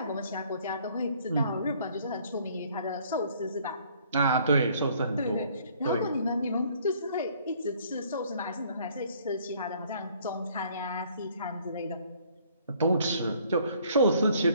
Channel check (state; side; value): inverted; both; correlation -0.60